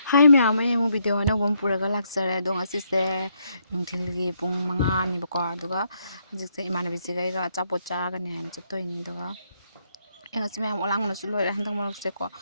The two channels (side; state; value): both; inverted; correlation -0.75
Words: Hi ma'am, ay mo video na bom puraga laksare dong asise nungthilgi pung 5 ni bako aduga hojikse imanabi sigaiga achapot chagani haina chattoini duga engasi ma'am olang na su loira handang marokse ko